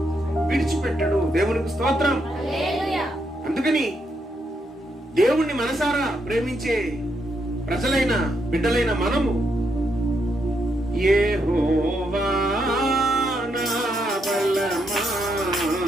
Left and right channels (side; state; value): both; normal; correlation 0.79